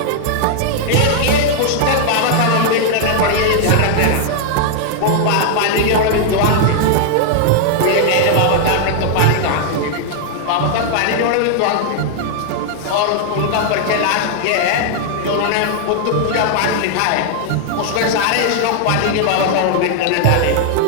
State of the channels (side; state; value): both; different; correlation 0.00